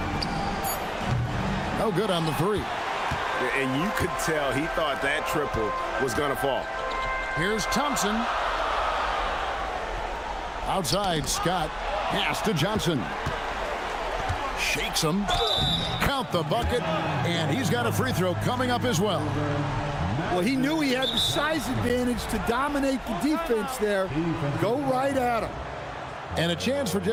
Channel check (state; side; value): identical; both; correlation 1.00